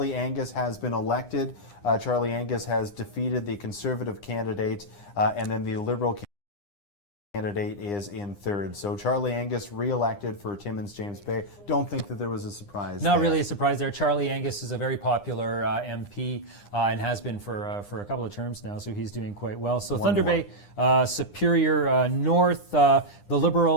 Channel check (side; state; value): right; late; 9.9 ms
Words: Angus has been elected. Charlie Angus has defeated the Conservative candidate, and then the Liberal candidate is in third. So Charlie Angus re-elected for Timmins, James Bay. Don't think that there was a surprise. Not really a surprise there. Charlie Angus is a very popular MP and has been for a couple of terms now, so he's doing quite well. So Thunder Bay, Superior North, the